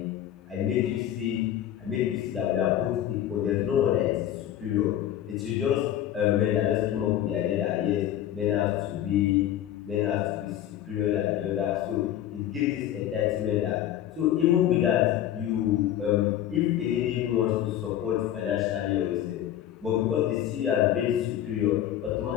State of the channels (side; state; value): right; quieter; 11.6 dB